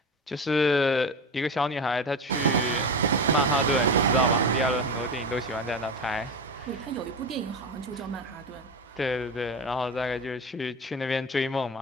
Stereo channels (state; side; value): normal; both; correlation 0.24